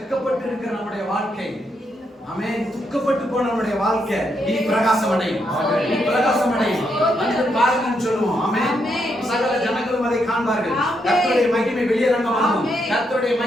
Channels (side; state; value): both; normal; correlation 0.79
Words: இருக்கிற நம்முடைய வாழ்க்கை, ஆமென், துக்கப்பட்டு போன நம்முடைய வாழ்க்கை இனி பிரகாசம் அடையும். இனி பிரகாசம் அடையும். வந்து பாருங்கன்னு சொல்லுவோம். ஆமென். சகல ஜனங்களும் அதை காண்பார்கள். கர்த்தருடைய மகிமை வெளியரங்கமாகும். கர்த்தருடைய